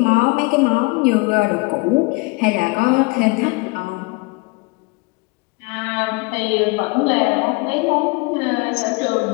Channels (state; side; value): quieter; right; 27.6 dB